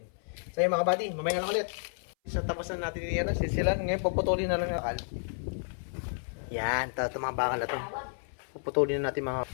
So yun mga kabady, mamaya na lang ulit. So tapos na natin yan, sisilan. Ngayon puputulin na lang yung akal. Yan, ito mga bakal na ito. Puputulin na natin mga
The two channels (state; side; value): silent; right; 56 dB below the other